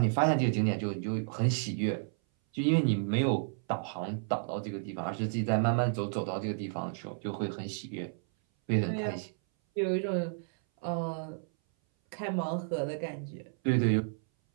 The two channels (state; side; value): silent; left; 57 dB below the other